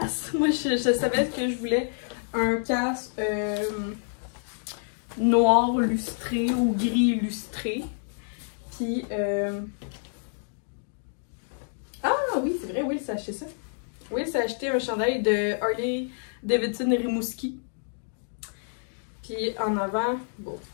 Moi, je savais que je voulais un casque noir lustré ou gris illustré. Puis, ah oui, c'est vrai, Will s'est acheté ça. Will s'est acheté un chandail de Harley Davidson Rimouski. Puis en avant, bon,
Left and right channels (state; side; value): silent; right; digital silence